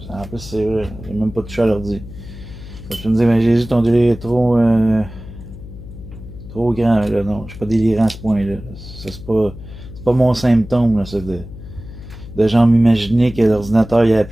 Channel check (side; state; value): left; noise; hum, 14 dB below the sound